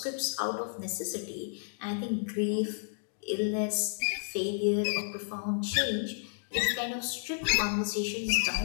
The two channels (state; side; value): silent; right; digital silence